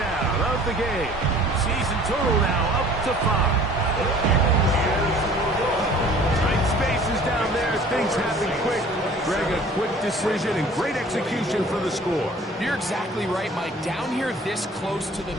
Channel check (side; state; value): both; normal; correlation 0.50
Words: of the game. Season total now up to 5. Tight spaces down there. Things happen quick. Greg, a quick decision and great execution for the score. You're exactly right, Mike. Down here this close to the